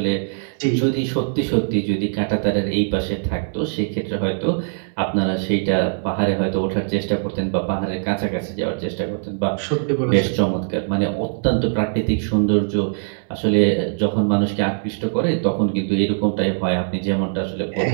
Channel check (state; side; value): silent; left; digital silence